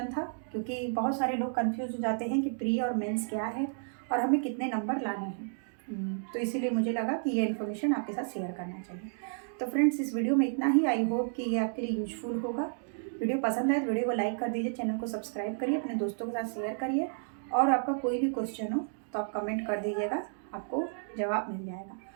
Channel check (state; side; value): silent; left; digital silence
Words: था, क्योंकि बहुत सारे लोग कंफ्यूज हो जाते हैं कि प्री और मेंस क्या है और हमें कितने नंबर लाने हैं। तो इसीलिए मुझे लगा कि ये इन्फॉर्मेशन आपके साथ शेयर करना चाहिए। तो फ्रेंड्स, इस वीडियो में इतना ही। आई होप कि ये आपके लिए यूजफुल होगा। वीडियो पसंद आए तो वीडियो को लाइक कर दीजिए, चैनल को सब्सक्राइब करिए, अपने दोस्तों के साथ शेयर करिए, और आपका कोई भी क्वेश्चन हो तो आप कमेंट कर दीजिएगा, आपको जवाब मिल जाएगा।